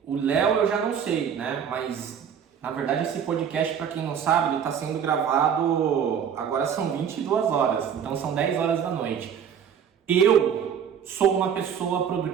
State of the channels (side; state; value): left; quieter; 8.0 dB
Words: o Léo eu já não sei, né, mas... Na verdade, esse podcast, para quem não sabe, ele está sendo gravado, agora são 22 horas, então são 10 horas da noite. Eu sou uma pessoa